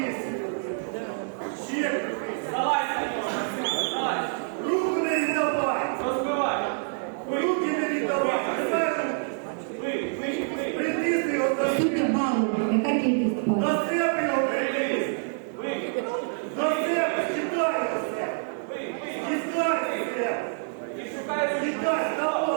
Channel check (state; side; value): silent; left; 60 dB below the other